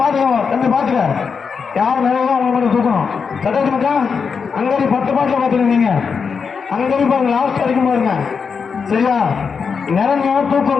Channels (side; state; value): right; quieter; 5.8 dB